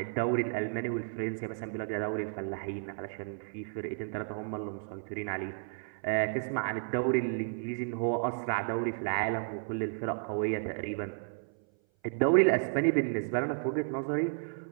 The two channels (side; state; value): left; silent; 56 dB below the other